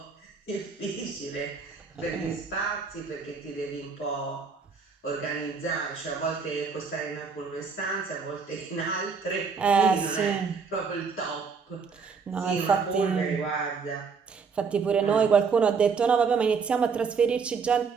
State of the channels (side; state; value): left; quieter; 5.4 dB